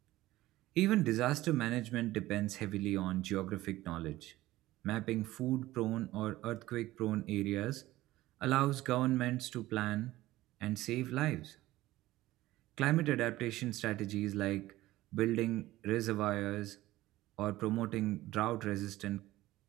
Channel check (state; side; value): quieter; left; 16.7 dB